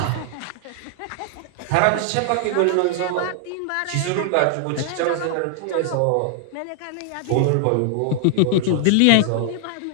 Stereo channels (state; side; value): different; both; correlation -0.01